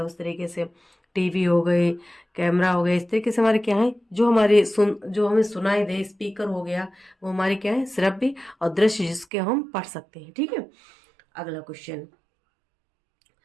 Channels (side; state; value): left; drops out; at 9.2 s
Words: उस तरीके से, टीवी हो गई, कैमरा हो गया, इस तरीके से हमारे क्या है जो हमारे जो हमें सुनाई दे, स्पीकर हो गया, वो हमारे क्या है? श्रव्य और दृश्य जिसके हम पढ़ सकते हैं। ठीक है, अगला question,